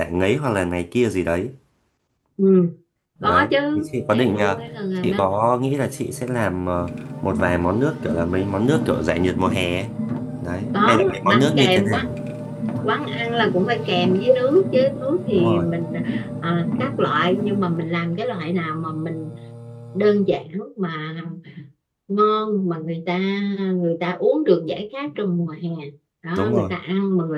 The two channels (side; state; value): both; identical; correlation 1.00